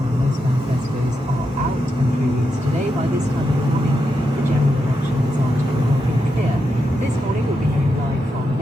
where most manifestos are out and through use today. By this time in the morning, the general election result will be clear. This morning we'll be hearing live from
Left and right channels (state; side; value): normal; both; correlation 0.85